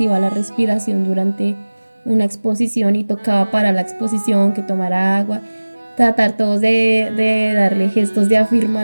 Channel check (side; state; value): both; inverted; correlation -1.00